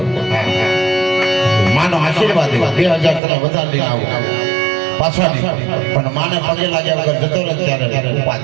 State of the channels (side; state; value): left; drops out; at 3.2 s